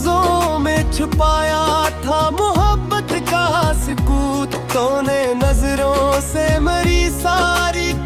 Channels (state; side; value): identical; both; correlation 1.00